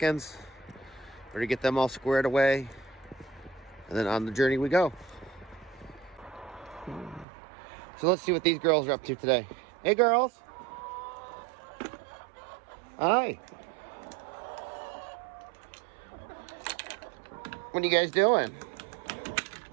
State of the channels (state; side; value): drops out; left; at 7.2 s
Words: We're going to get them all squared away. And then on the journey we go. So let's see what these girls are up to today. Hey girls. Hi. What are you guys doing?